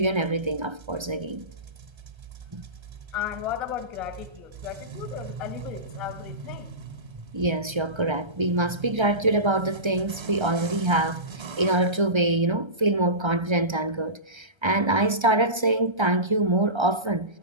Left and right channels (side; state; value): left; late; 1.3 ms